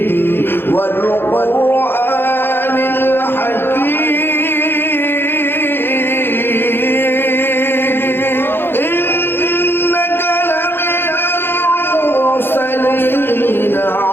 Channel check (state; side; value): late; right; 0.10 ms